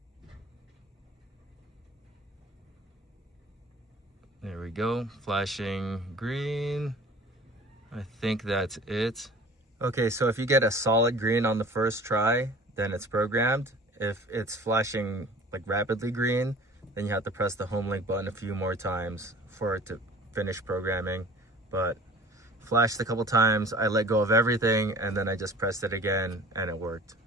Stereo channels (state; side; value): normal; both; correlation 0.45